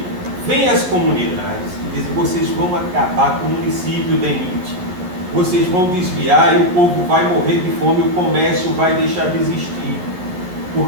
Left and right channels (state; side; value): late; left; 11 ms